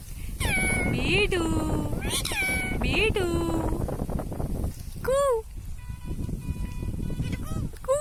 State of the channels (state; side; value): identical; both; correlation 1.00